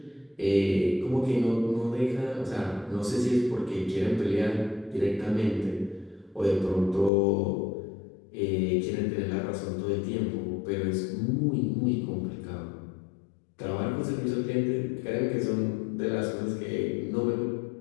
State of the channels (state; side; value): drops out; right; at 7.1 s